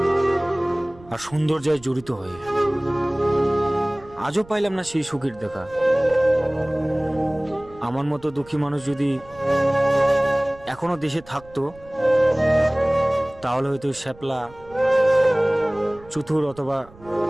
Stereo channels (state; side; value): noise; right; rumble, 23 dB below the sound